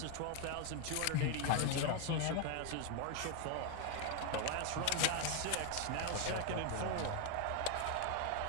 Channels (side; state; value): both; different; correlation 0.01